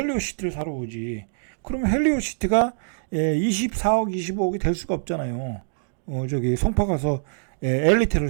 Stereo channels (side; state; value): left; silent; digital silence